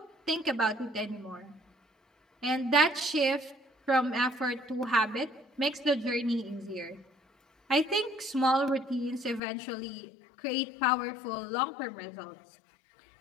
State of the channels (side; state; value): right; drops out; at 9.4 s